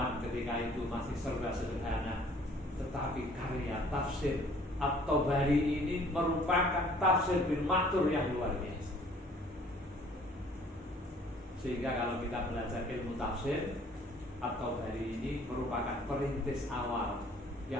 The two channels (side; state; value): both; normal; correlation 0.56